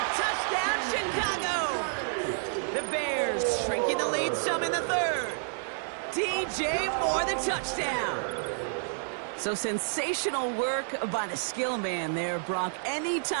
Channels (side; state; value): left; silent; digital silence